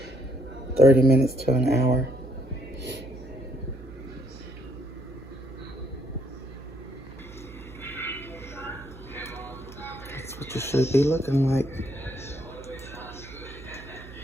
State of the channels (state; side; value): noise; right; hum, 16 dB below the sound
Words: 30 minutes to an hour. That's what you should be looking like.